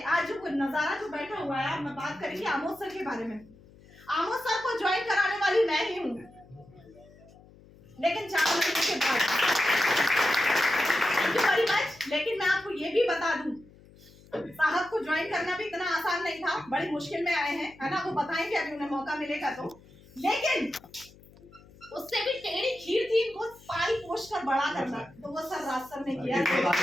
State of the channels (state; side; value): noise; left; hum, 24 dB below the sound